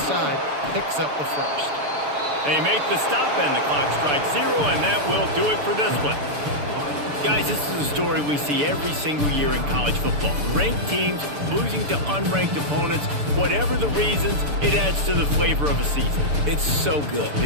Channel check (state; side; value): late; left; 6.8 ms